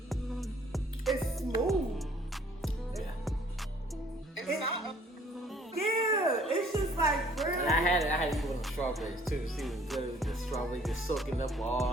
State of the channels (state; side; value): normal; both; correlation 0.58